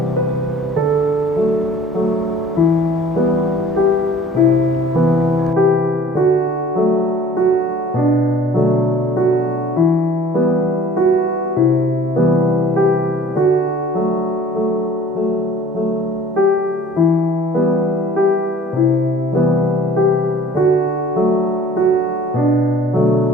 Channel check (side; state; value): both; normal; correlation 0.50